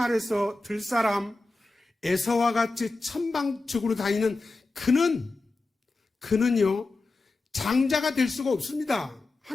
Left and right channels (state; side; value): quieter; right; 3.3 dB